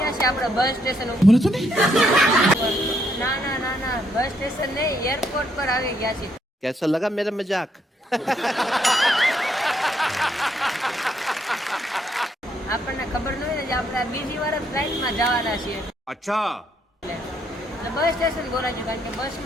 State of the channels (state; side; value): normal; both; correlation 0.73